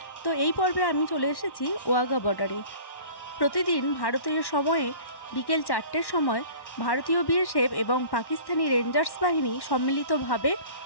তো এই পর্বে আমি চলে এসেছি ওয়াঘা বর্ডারে। প্রতিদিন ভারতীয় সময়ে বিকেল 4টের সময় ভারতীয় বিএসএফ এবং পাকিস্তানি রেঞ্জার্স বাহিনী সম্মিলিতভাবে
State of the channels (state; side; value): late; right; 1.1 ms